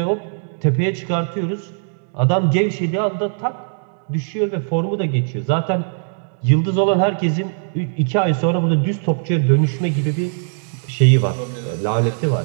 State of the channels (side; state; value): left; silent; digital silence